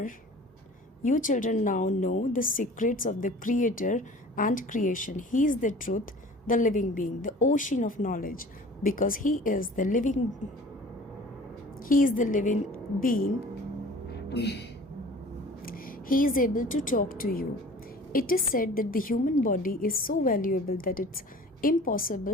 now know the secrets of the Creator and creation. He is the truth, the living being, the ocean of knowledge, because He is the living being. He is able to talk to you. It is said that the human body is so valuable that it's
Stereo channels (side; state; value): both; normal; correlation 0.45